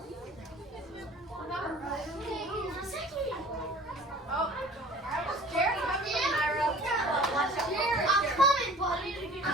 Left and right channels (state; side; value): normal; both; correlation 0.48